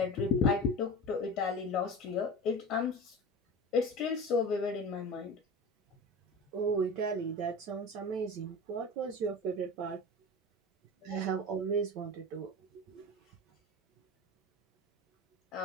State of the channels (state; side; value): normal; both; correlation 0.31